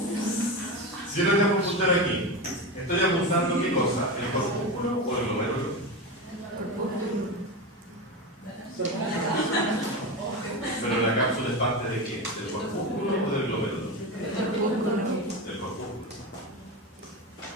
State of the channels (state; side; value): normal; both; correlation 0.20